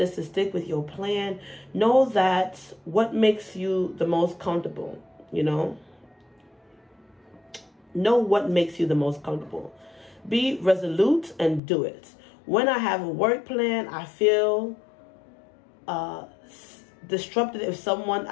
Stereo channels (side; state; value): right; drops out; at 11.6 s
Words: to stick with your plan. Know that what makes you the most comfortable, you know. Know what makes you the most comfortable. Be resolute and do it. When I have a work plan, I feel disrupted if some